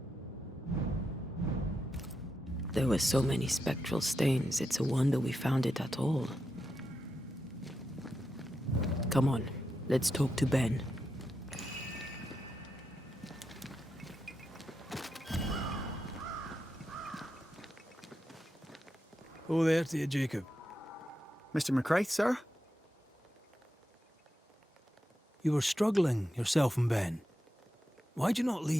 There were so many spectral stains, it's a wonder we found it at all. Come on, let's talk to Ben. Oh, there to you, Jacob. Mr. McCraith, sir? You were struggling, yourself and Ben. Why'd you not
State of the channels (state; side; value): normal; both; correlation 0.87